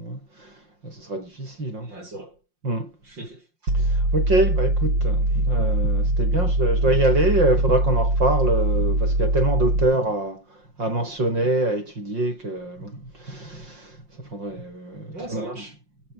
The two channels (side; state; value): left; late; 5.6 ms